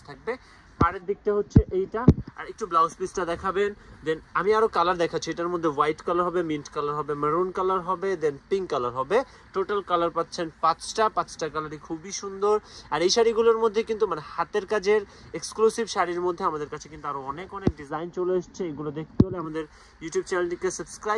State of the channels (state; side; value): identical; both; correlation 1.00